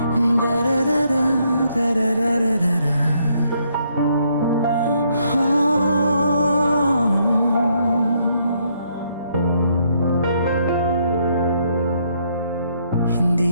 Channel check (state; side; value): inverted; both; correlation -0.72